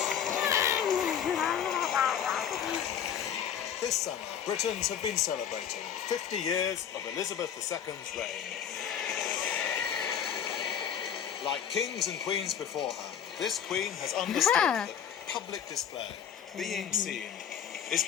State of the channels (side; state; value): right; quieter; 8.7 dB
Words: This summer, Britons have been celebrating 50 years of Elizabeth II's reign. Like kings and queens before her, this queen has understood that public display, being seen, is